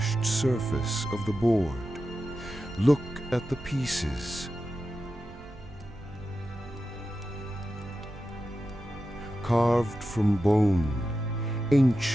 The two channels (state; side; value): normal; both; correlation 0.91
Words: surface of the board. Look at the pieces. Carved from bone,